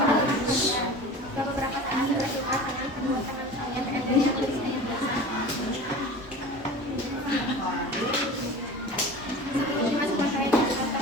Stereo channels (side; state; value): both; normal; correlation 0.36